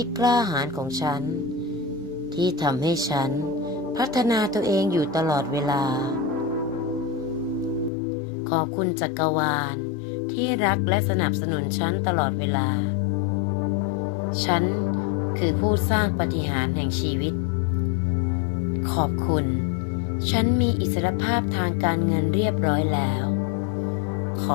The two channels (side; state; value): right; drops out; at 7.9 s